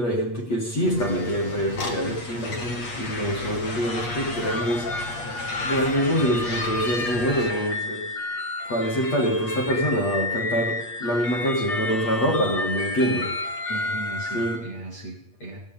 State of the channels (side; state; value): right; late; 8.4 ms